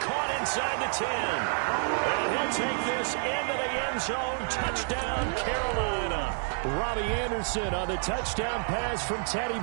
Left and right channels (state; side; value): silent; left; 59 dB below the other